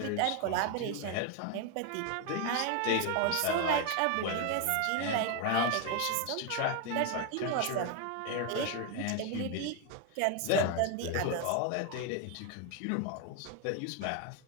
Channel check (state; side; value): different; both; correlation 0.01